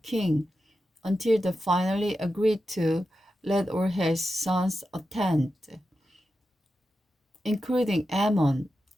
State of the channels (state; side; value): normal; both; correlation 0.90